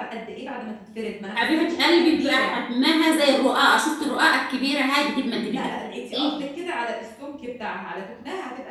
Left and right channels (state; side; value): identical; both; correlation 1.00